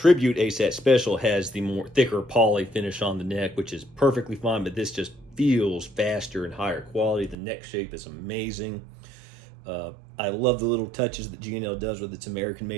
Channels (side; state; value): left; drops out; at 7.4 s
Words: ASAT Special has the more thicker poly finish on the neck, which is perfectly fine, but this just feels faster and higher quality. The neck shape is amazing. I love the little touches that G&L does with its